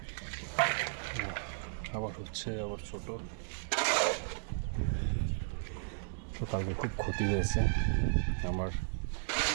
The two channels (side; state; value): left; silent; digital silence